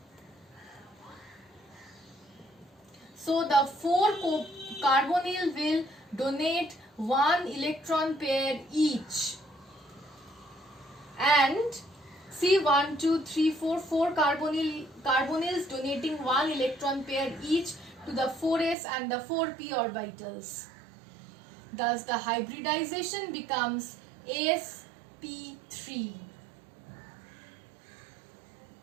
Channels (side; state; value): left; drops out; at 18.8 s